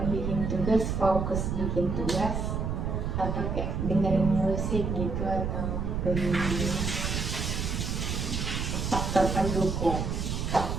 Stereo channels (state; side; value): noise; right; rumble, 1 dB below the sound